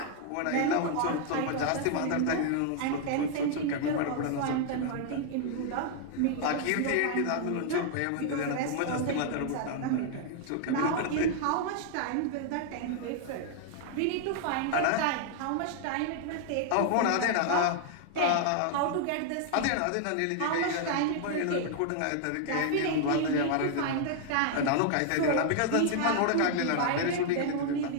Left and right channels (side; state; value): both; different; correlation -0.01